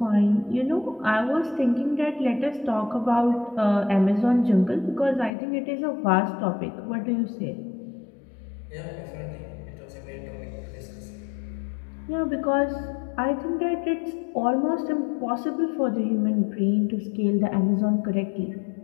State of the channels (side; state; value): right; drops out; at 5.3 s